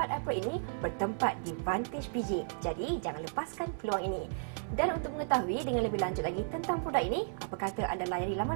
April ini bertempat di Vantage PJ. Jadi, jangan lepaskan peluang ini. Dan untuk mengetahui dengan lebih lanjut lagi tentang produk ini, apa kata anda layari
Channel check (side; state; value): left; silent; 55 dB below the other